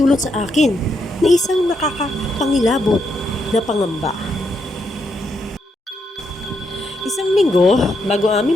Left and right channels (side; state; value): both; normal; correlation 0.79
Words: sa akin na isang nakakapangilabot na pangamba. Isang linggo bago aming